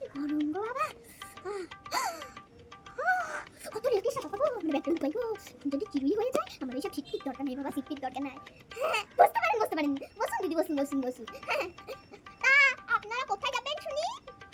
গরম গো বাবা। কত রেখে সাথে পাবো মানে ব্যাগটা লুকাই গো, যদি চুরি হয়ে যায় আমার এইসব সিটটির দরকার নেই বাবা, সিটটির দরকার নাই। হ্যাঁ বসতে পারেন বসুন দিদি, বসুন। তা আপনারা কোথায় যাবেন শুনি?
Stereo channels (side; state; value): both; identical; correlation 1.00